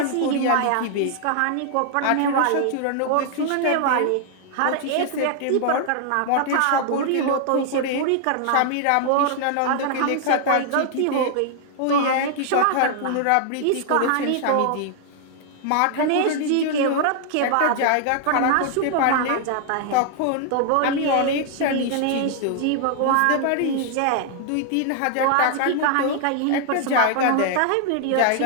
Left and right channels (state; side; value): different; both; correlation 0.00